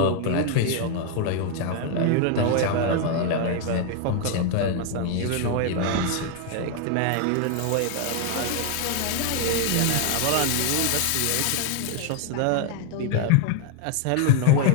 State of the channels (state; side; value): different; both; correlation 0.00